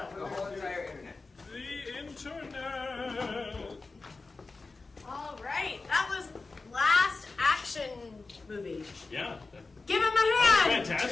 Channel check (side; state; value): right; quieter; 3.8 dB